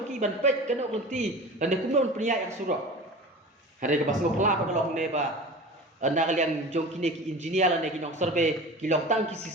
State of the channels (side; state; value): both; normal; correlation 0.36